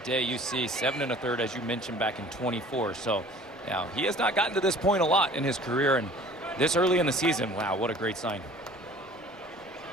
you see 7 1/3, as you mentioned, back in 24. So now he has not gotten to this point a lot in his career, and this early in the season, wow, what a great sign.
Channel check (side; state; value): both; normal; correlation 0.48